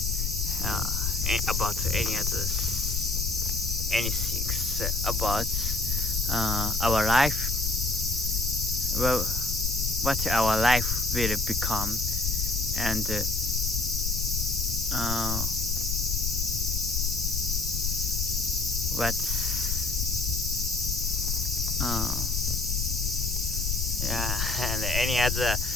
about anything about our life, well, what our life will become, and and any other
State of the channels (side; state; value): left; noise; rumble, 1 dB below the sound